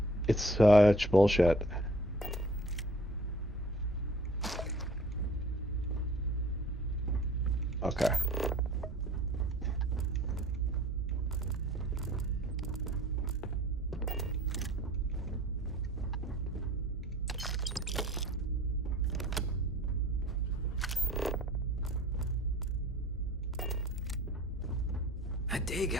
It's such bullshit. Okay. I dig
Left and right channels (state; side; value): normal; both; correlation 0.50